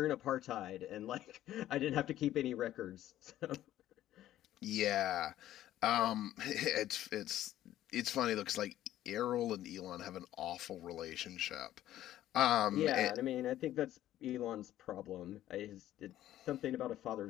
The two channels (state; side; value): quieter; right; 13.2 dB